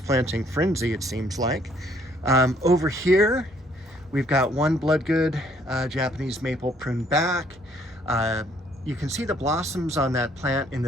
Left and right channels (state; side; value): normal; both; correlation 0.64